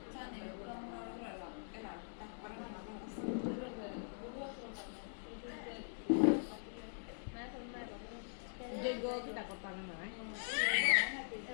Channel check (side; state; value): right; silent; digital silence